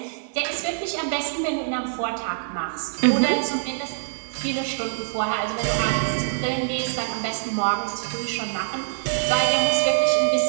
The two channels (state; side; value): silent; left; digital silence